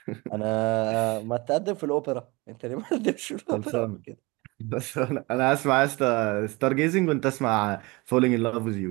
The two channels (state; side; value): quieter; left; 24.7 dB